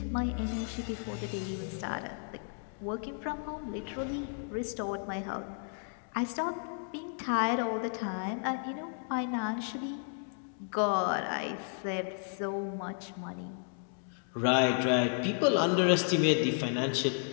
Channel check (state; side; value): silent; right; 56 dB below the other